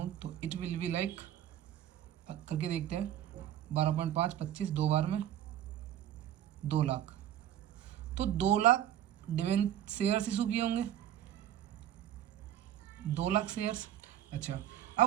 तो इट विल बी लाइक, करके देखते हैं, 12.5 25 दो बार में 2 लाख, तो 2 लाख डिवेंचर शेयर्स इशू किए होंगे, 2 लाख शेयर्स। अच्छा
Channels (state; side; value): quieter; left; 11.4 dB